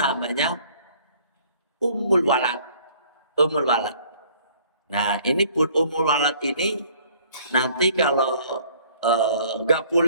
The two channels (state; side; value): inverted; both; correlation -0.57